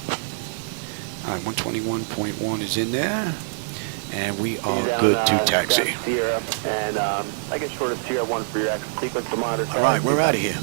All right, 121.1 is in there. And we are good to taxi. Sierra, and I get short of Sierra 1 for your exit sequence to monitor. All right, we're out of here.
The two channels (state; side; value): silent; left; 63 dB below the other